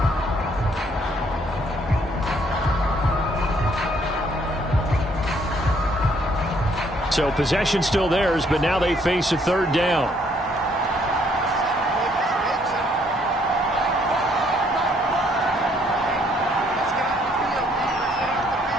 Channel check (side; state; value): both; normal; correlation 0.66